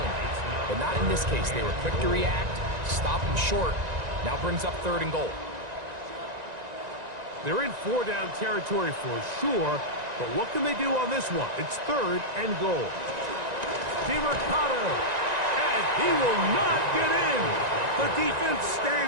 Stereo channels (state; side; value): late; left; 1.9 ms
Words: But not in this case. They were quick to react, stop him short. Now brings up third and goal. They're in four-down territory for sure, but what can they do on this one? It's third and goal. DiMercato, and he will not get in. The defense